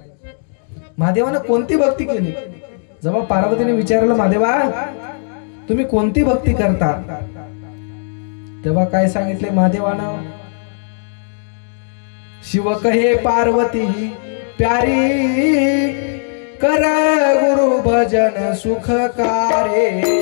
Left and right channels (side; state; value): right; silent; digital silence